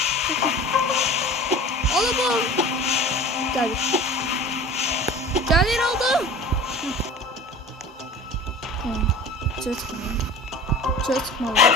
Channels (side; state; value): both; normal; correlation 0.39